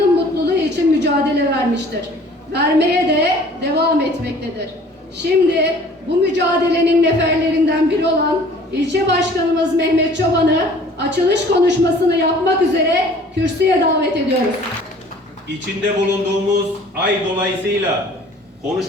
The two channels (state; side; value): normal; both; correlation 0.51